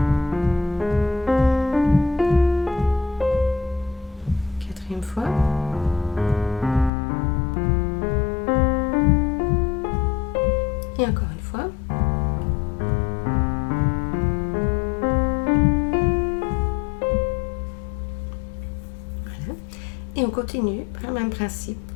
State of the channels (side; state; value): right; drops out; at 6.9 s